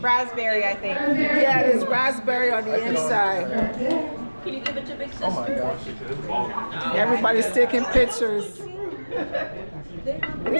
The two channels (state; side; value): inverted; both; correlation -1.00